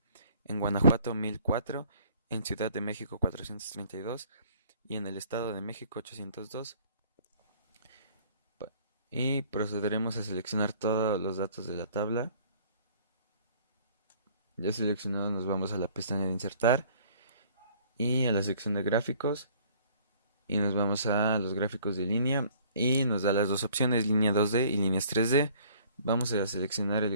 en Guanajuato 1004, en Ciudad de México 432 y en el Estado de México 802. Y procederemos a seleccionar todos los datos de la tabla. Ya seleccionado, nos vamos a la pestaña de insertar y a la sección de gráficos y nos vamos a los gráficos de línea y nos da las dos opciones, línea 2D y líneas 3D. Vamos a seleccionar el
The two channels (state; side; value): inverted; both; correlation -0.56